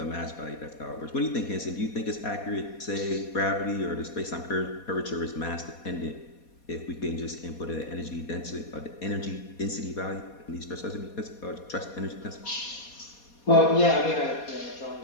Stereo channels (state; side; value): late; right; 4.2 ms